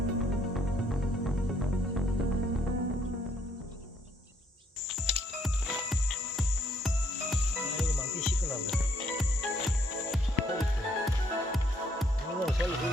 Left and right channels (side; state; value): both; normal; correlation 0.68